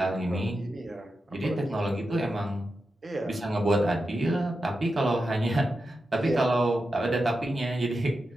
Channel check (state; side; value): normal; both; correlation 0.89